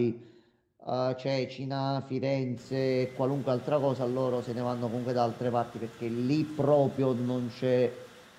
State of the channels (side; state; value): both; identical; correlation 1.00